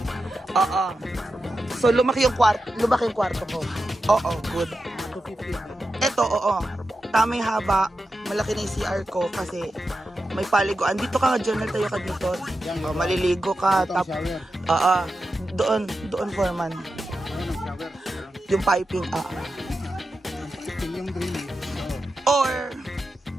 Oo. So lumaki yung kwarto ko. Oo, good. 250. Ito, oo. Tamang haba. Malaki na yung CR ko kasi may paliguan. Dito ka nga, journal tayo ka dito. Oh, maliligo ka. Oo. Doon foreman. Yung piping, Yung drain. Or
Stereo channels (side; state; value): both; normal; correlation 0.90